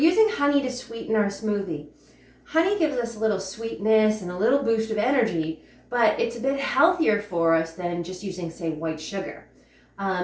honey to sweeten our smoothie. Honey gives us a little sweetness and a little boost of energy, but it's a bit healthier for us than just using, say, white sugar.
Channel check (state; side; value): identical; both; correlation 1.00